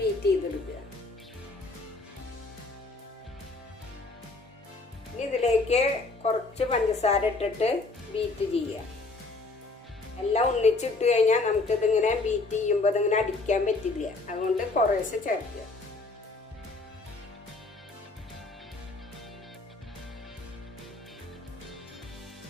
ചെയ്തെടുക്കുക. ഇനി ഇതിലേക്ക് കുറച്ച് പഞ്ചസാര ഇട്ടിട്ട് ബീറ്റ് ചെയ്യുക. എല്ലാം ഒന്നിച്ചിട്ട് കഴിഞ്ഞാൽ നമുക്കിതിങ്ങനെ ബീറ്റ് ചെയ്യുമ്പോൾ ഇതിങ്ങനെ അടിക്കാൻ പറ്റില്ല. അതുകൊണ്ട് കുറേശ്ശെ ചേർക്കുക.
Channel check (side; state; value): right; quieter; 3.4 dB